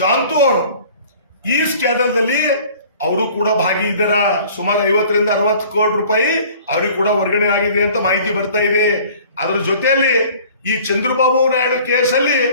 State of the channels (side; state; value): both; inverted; correlation -0.49